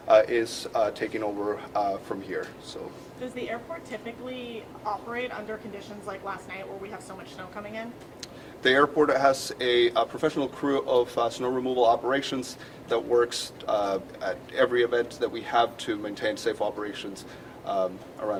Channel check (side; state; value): both; identical; correlation 1.00